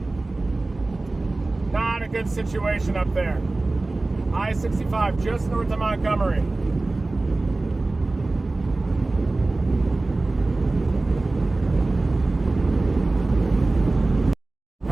Not a good situation up there. I-65 just north of Montgomery.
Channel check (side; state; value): left; quieter; 3.1 dB